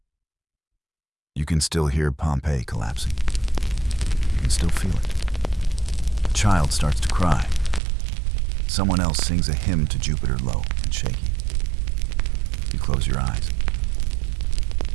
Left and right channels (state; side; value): drops out; left; at 7.8 s